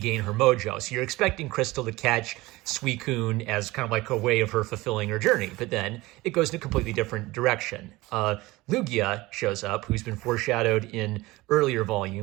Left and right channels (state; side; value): quieter; left; 20.2 dB